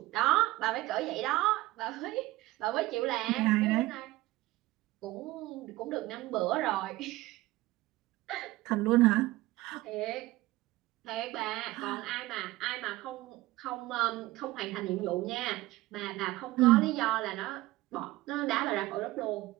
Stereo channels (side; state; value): left; quieter; 18.3 dB